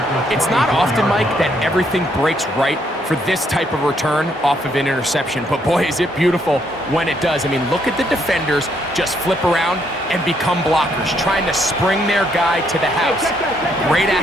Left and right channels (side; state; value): both; normal; correlation 0.72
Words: It's not often, Mike, that everything breaks right for this type of return off of an interception. But boy, is it beautiful when it does. I mean, look at the defenders just flip around and become blockers, trying to spring their guy to the house. Great